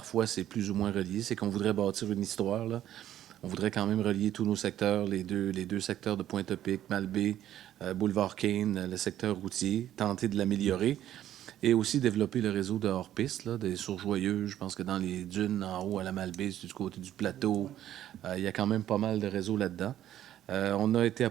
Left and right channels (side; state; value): left; quieter; 12.0 dB